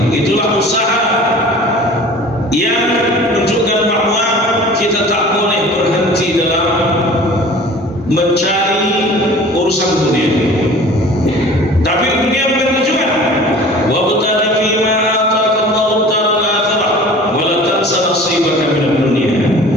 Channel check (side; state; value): both; normal; correlation 0.43